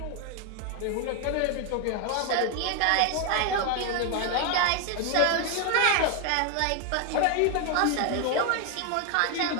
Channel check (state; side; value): different; both; correlation 0.01